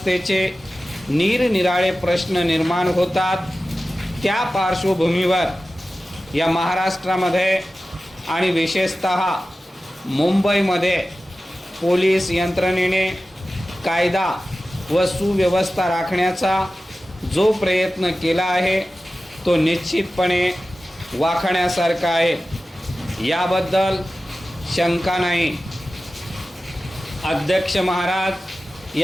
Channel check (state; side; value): normal; both; correlation 0.95